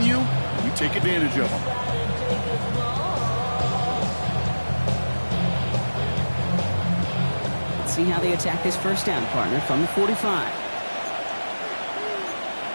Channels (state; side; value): inverted; both; correlation -1.00